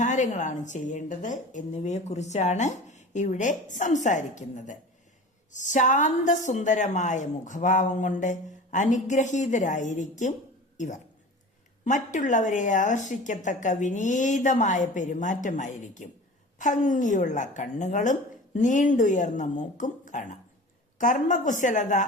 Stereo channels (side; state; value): both; normal; correlation 0.37